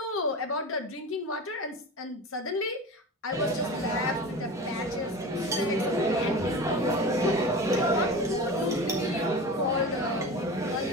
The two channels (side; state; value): both; normal; correlation 0.31